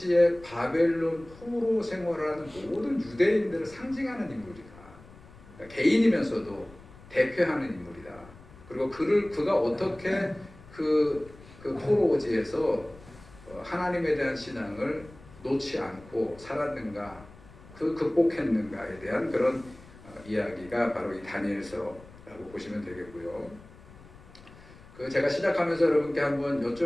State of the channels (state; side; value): noise; left; rumble, 21 dB below the sound